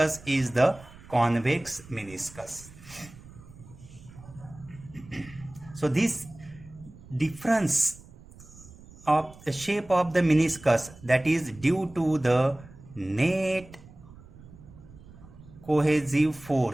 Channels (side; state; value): right; noise; rumble, 20 dB below the sound